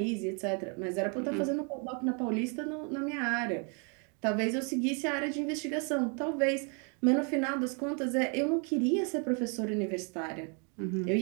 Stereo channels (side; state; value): left; quieter; 37.5 dB